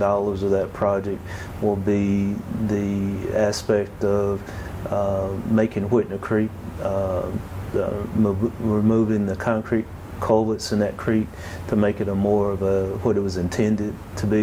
of that project will be the aspect of making Whitner Creek, removing the concrete culverts in that creek to make it a more of what it was intended to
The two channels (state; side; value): identical; both; correlation 1.00